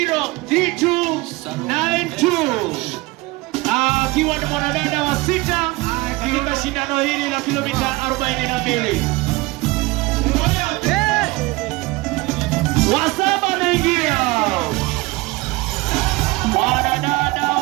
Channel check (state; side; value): quieter; left; 22.0 dB